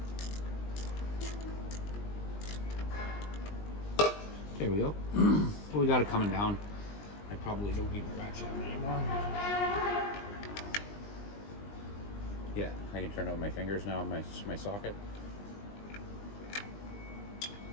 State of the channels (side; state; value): right; late; 20 ms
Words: There we go. Well, we got it coming down. I probably don't need my ratchet anymore. Yeah, I can turn on my fingers now, my socket.